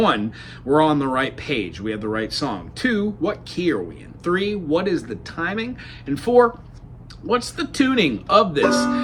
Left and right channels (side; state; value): both; identical; correlation 1.00